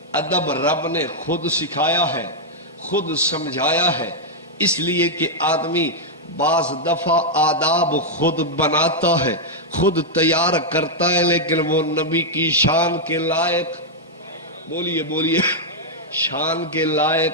ادب رب نے خود سکھایا ہے، خود سمجھایا ہے، اس لیے کہ آدمی بعض دفعہ آداب خود بناتا ہے، خود تیار کرتا ہے، لیکن وہ نبی کی شان کے لائق، بولیے شان کے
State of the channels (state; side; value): normal; both; correlation -0.03